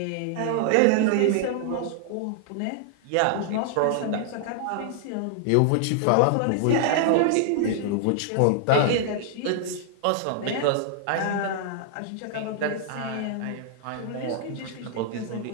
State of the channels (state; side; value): different; both; correlation -0.01